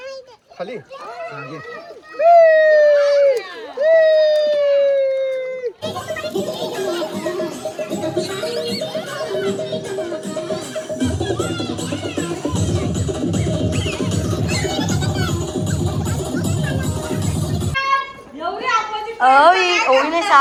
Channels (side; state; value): both; identical; correlation 1.00